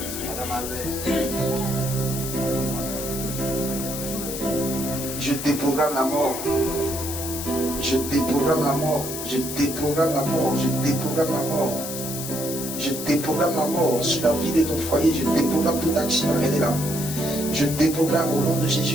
Je déprogramme la mort. Je déprogramme la mort. Je déprogramme la mort. Je déprogramme la mort. Je déprogramme la mort sur la vie de ton foyer. Je déprogramme toute action. Elle est là. Je déprogramme au nom de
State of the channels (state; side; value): noise; left; hiss, 6 dB below the sound